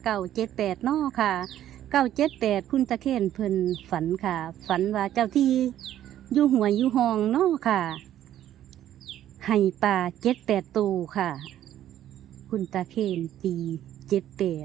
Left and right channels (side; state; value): left; quieter; 11.9 dB